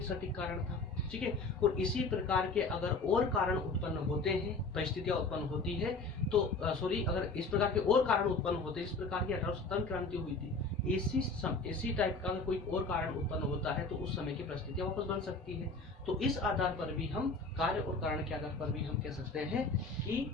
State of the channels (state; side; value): quieter; right; 3.6 dB